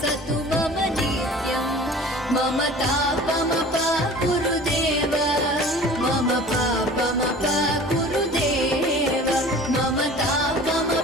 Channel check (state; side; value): normal; both; correlation 0.43